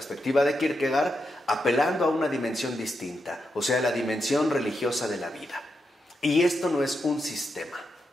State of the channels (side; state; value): both; normal; correlation 0.85